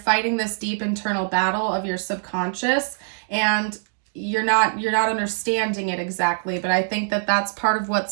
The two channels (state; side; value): silent; left; 63 dB below the other